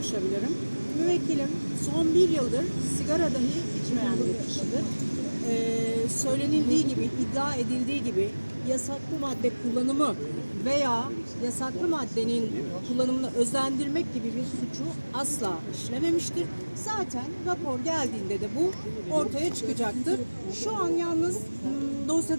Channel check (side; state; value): both; inverted; correlation -1.00